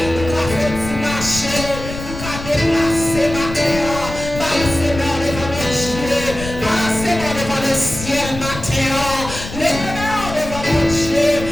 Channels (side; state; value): left; noise; rumble, 10 dB below the sound